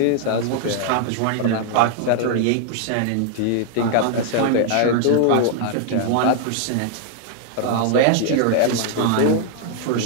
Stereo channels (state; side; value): different; both; correlation 0.00